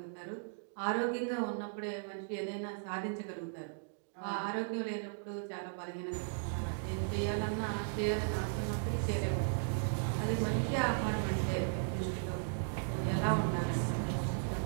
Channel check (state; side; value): silent; left; digital silence